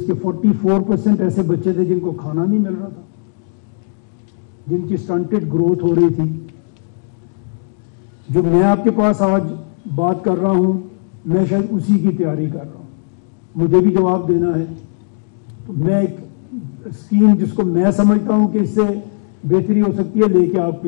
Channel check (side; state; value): right; silent; 68 dB below the other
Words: کے 44% ایسے بچے تھے جن کو کھانا نہیں مل رہا تھا، جن کی سٹنٹڈ گروتھ ہو رہی تھی. جو میں آپ کے پاس آج بات کر رہا ہوں میں شاید اسی کی تیاری کر رہا ہوں. مجھے بھی جواب دینا ہے. تو میں ایک اسکیم جس کو میں سمجھتا ہوں کہ اس سے بہتری ہو سکتی ہے لے کے آپ